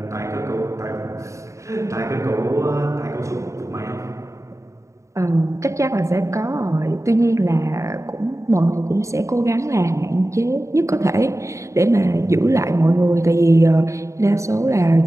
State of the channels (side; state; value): left; late; 0.15 ms